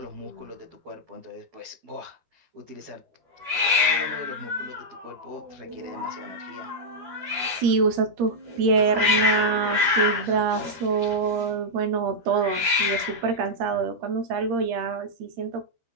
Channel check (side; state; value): left; late; 12 ms